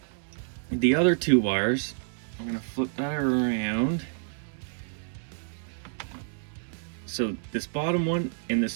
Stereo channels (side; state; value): left; silent; digital silence